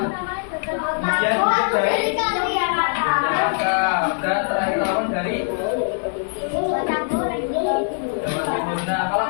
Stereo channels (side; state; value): right; silent; digital silence